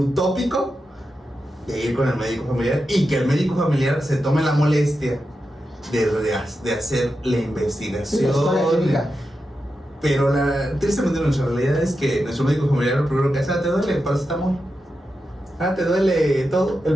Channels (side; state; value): both; normal; correlation 0.89